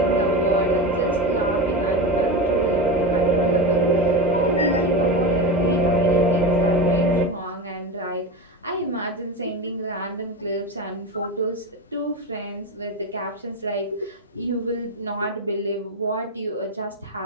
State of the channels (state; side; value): normal; both; correlation 0.20